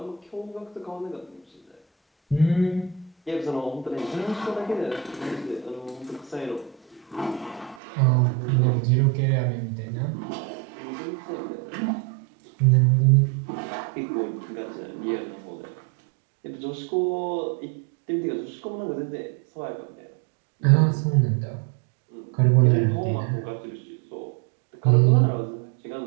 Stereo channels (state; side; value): drops out; left; at 7.8 s